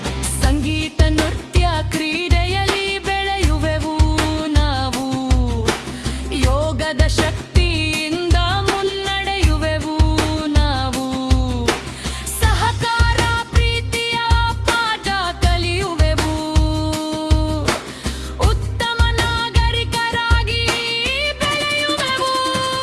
ಸಂಗೀತ ನೃತ್ಯ ಕ್ರೀಡೆಯಲ್ಲಿ ಬೆಳೆಯುವೆವು ನಾವು. ಯೋಗದ ಶಕ್ತಿಯಿಂದ ಮುನ್ನಡೆಯುವೆವು ನಾವು. ಸಹಕಾರ ಪ್ರೀತಿಯ ಪಾಠ ಕಲಿಯುವೆವು, ಉತ್ತಮ ನಾಗರಿಕರಾಗಿ ಬೆಳೆಯುವೆವು.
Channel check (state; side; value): identical; both; correlation 1.00